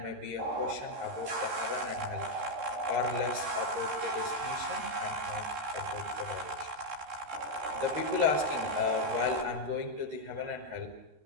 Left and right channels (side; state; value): left; late; 13 ms